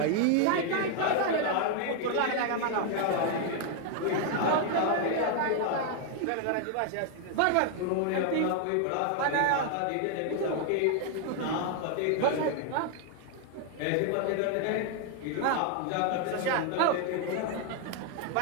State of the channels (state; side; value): different; both; correlation 0.00